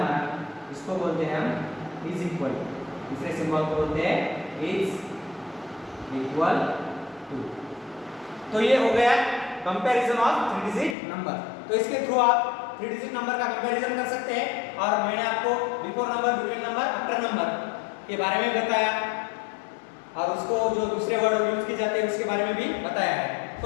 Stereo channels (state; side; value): drops out; right; at 11.0 s